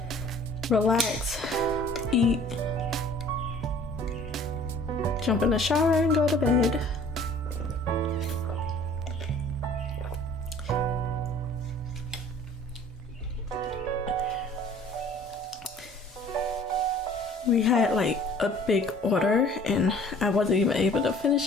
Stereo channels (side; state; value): both; normal; correlation 0.51